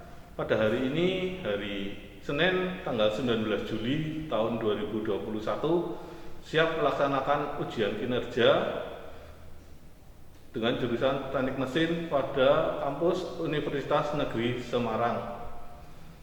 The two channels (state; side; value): identical; both; correlation 1.00